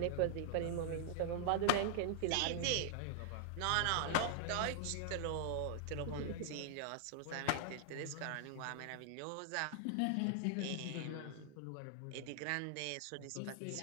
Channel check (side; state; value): both; different; correlation 0.00